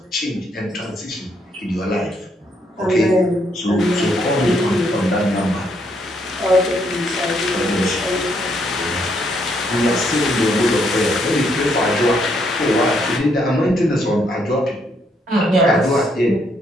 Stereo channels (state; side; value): normal; both; correlation 0.73